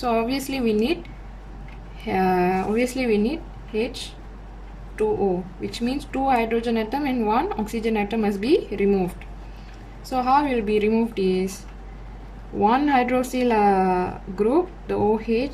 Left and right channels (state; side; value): identical; both; correlation 1.00